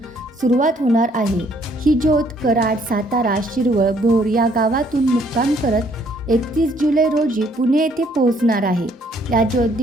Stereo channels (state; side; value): normal; both; correlation 0.65